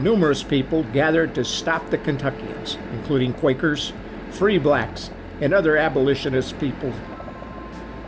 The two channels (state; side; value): identical; both; correlation 1.00